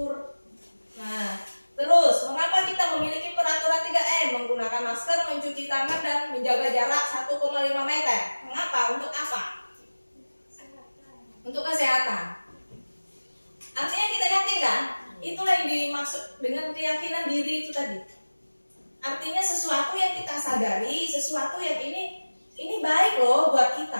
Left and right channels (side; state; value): both; inverted; correlation -1.00